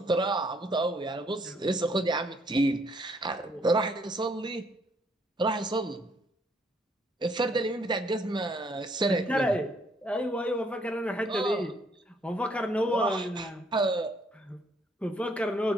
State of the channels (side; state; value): both; normal; correlation 0.67